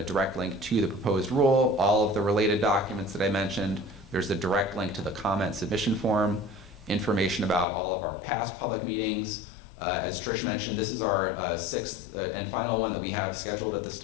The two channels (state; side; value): drops out; right; at 7.7 s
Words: direct link to the proposed rule, all of the related documents that I mentioned. There's a direct link to the comment submission form, information about all of our past public meetings. As Trish mentioned, this is our sixth and final one that we have scheduled at this